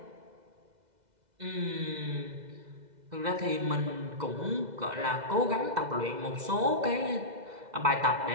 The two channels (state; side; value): late; left; 2.0 ms